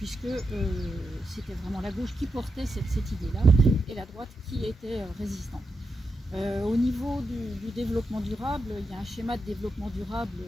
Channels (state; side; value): normal; both; correlation 0.86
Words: c'était vraiment la gauche qui portait cette idée-là et la droite qui était résistante. Au niveau du développement durable, il y a un schéma de développement durable